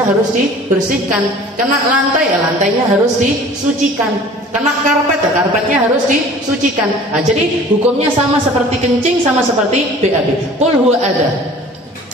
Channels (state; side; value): normal; both; correlation 0.47